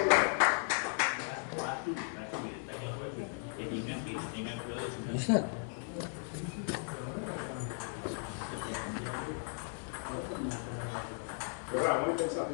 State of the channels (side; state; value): right; silent; 54 dB below the other